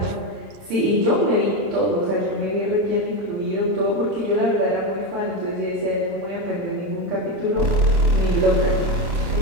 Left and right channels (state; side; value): late; left; 31 ms